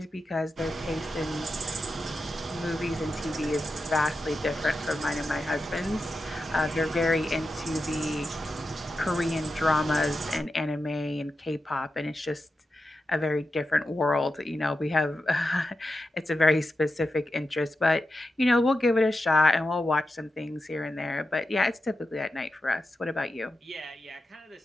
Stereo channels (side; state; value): both; normal; correlation 0.90